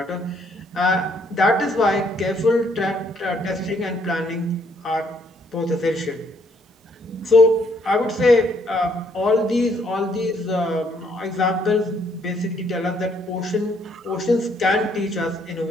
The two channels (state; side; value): normal; both; correlation 0.69